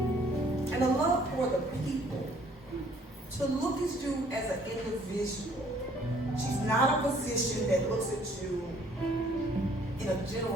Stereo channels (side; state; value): both; normal; correlation 0.60